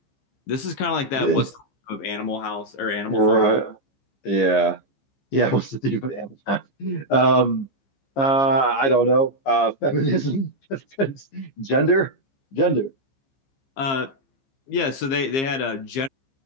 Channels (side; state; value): right; late; 15 ms